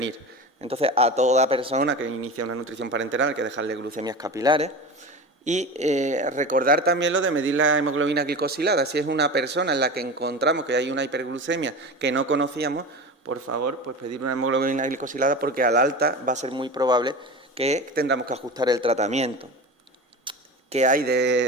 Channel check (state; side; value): normal; both; correlation 0.29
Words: Entonces, a toda persona que inicia una nutrición parenteral hay que dejarle glucemias capilares. Y recordar también lo de medir la hemoglobina glicosilada. Si es una persona en la que encontramos que hay una hiperglucemia que no conocíamos, por favor, pues pedir una hemoglobina glicosilada, porque al alta va a ser muy probable que tendremos que ajustar el tratamiento. ¿Qué hay